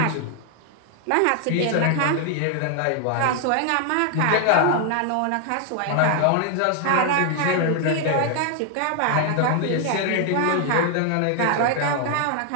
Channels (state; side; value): different; both; correlation 0.00